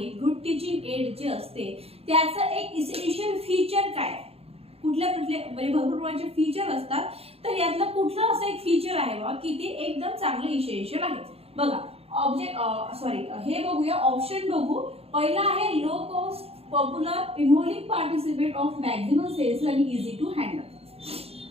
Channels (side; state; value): left; late; 0.29 ms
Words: गुड टीचिंग एड जे असते त्याचं एक इसेन्शियल फीचर काय? कुठल्या म्हणजे भरपूर प्रकारचे फीचर असतात, तर यातलं कुठलं असं एक फीचर आहे बा की ते एकदम चांगलं इसेन्शियल आहे? बघा हे बघूया, ऑप्शन बघू। पहिला आहे low cost, popular, involving participate of maximum sales आणि इझी टू हँडल।